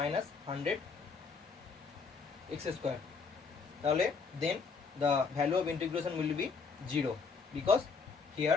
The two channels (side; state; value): right; quieter; 5.1 dB